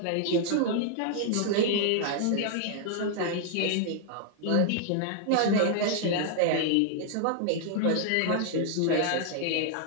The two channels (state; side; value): different; both; correlation 0.00